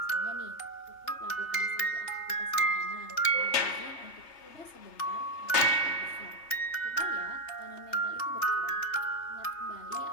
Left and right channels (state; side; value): late; right; 3.3 ms